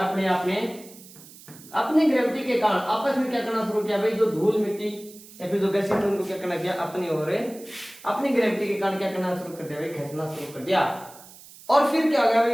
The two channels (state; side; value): noise; right; hiss, 20 dB below the sound